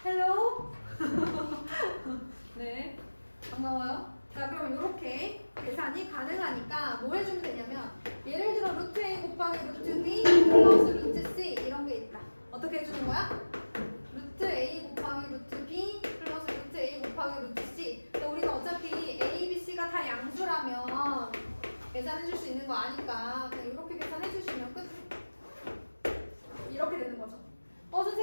헬로? 네, 반가워요. 자, 그럼 이렇게 계산이 가능하니까 뭐 해주면 되냐면, 예를 들어 루트 a 곱하기 루트 b 플러스 루트 c 이런 게 있다. 어떻게 해주는 거야? 루트 a 곱하기 루트 b 플러스 루트 a 곱하기 루트 c. 그러니까 우리가 어차피 a, b, c가 다 양수라면 계산해줄 수 있는 거 아니까 그냥 이렇게 계산해주시면 끝. 이렇게 되는 거죠.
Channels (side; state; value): both; inverted; correlation -1.00